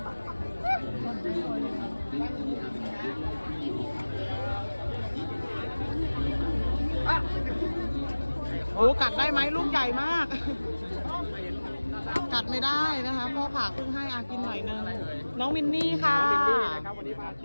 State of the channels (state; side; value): inverted; both; correlation -1.00